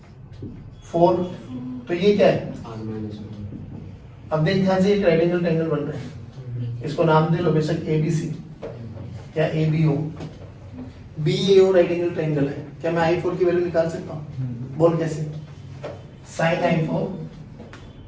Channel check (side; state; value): both; identical; correlation 1.00